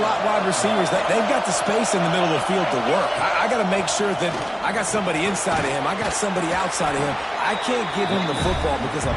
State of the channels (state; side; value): identical; both; correlation 1.00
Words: wide receivers, they've got the space in the middle of the field to work. I got to make sure that I got somebody inside of him. I got somebody outside of him. I can't give him the football because a